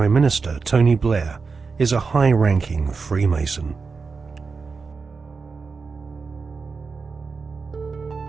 Minister Tony Blair is a high-ranking Freemason.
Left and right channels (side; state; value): left; quieter; 4.8 dB